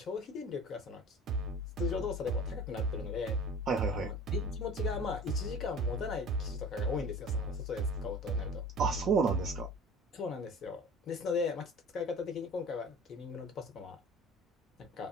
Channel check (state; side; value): normal; both; correlation 0.41